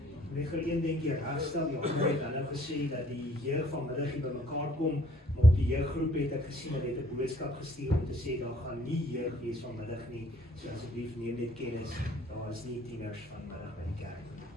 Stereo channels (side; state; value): both; normal; correlation 0.60